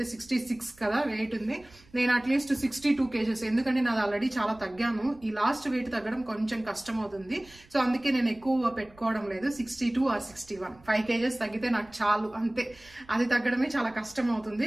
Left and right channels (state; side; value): noise; right; rumble, 26 dB below the sound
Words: 66 కదా వెయిట్ ఉంది, నేను అట్లీస్ట్ 62 kgs, ఎందుకంటే నాది ఆల్రెడీ చాలా తగ్గాను. ఈ లాస్ట్ వెయిట్ తగ్గడం కొంచెం కష్టం అవుతుంది, సో అందుకే నేను ఎక్కువ పెట్టుకోవడం లేదు. 62 or 61, 5 kgs తగ్గితే నాకు చాలు, అంతే. అది తగ్గడమే చాలా కష్టం